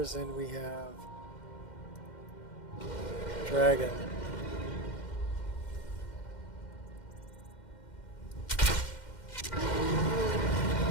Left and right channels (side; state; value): right; late; 2.1 ms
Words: and we have dragon.